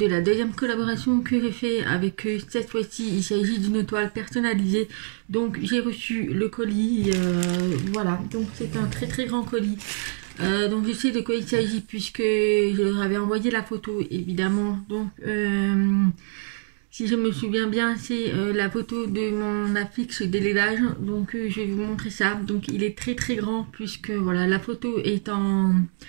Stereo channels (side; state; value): left; silent; digital silence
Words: la deuxième collaboration que j'ai fait avec eux. Cette fois-ci il s'agit d'une toile personnalisée. Donc j'ai reçu le colis, voilà, donc c'est un très grand colis. Donc je sais de quoi il s'agit puisque je leur avais envoyé la photo évidemment. Donc si je me souviens bien, c'est la photo de mon affiche d'élevage. Donc je vais vous montrer ça. Donc il est très grand puisque voilà, la photo est en